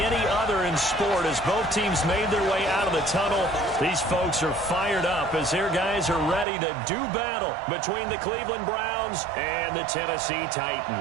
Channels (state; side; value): drops out; left; at 6.5 s